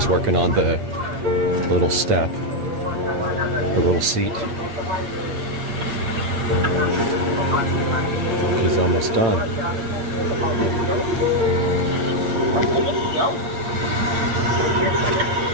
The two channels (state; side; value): late; left; 8.8 ms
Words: working on the little step, the little seat. He's almost done.